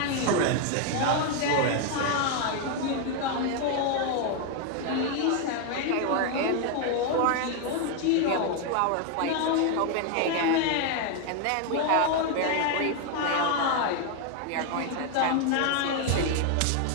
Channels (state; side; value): different; both; correlation 0.01